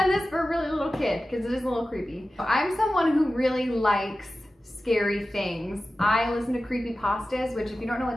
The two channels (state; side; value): normal; both; correlation 0.94